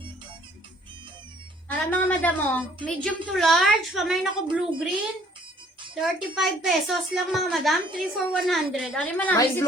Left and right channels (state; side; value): normal; both; correlation 0.59